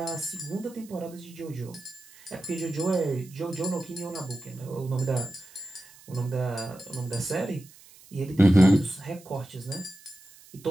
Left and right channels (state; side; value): noise; right; hiss, 23 dB below the sound